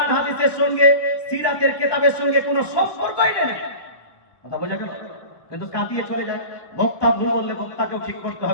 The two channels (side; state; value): right; late; 1.2 ms